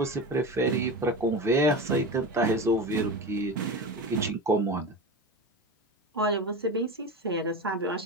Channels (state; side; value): normal; both; correlation 0.26